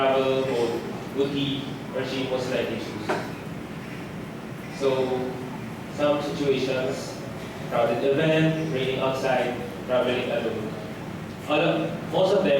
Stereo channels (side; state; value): both; identical; correlation 1.00